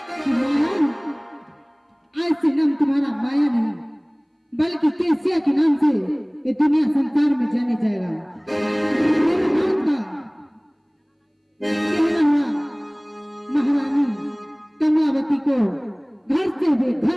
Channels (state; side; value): identical; both; correlation 1.00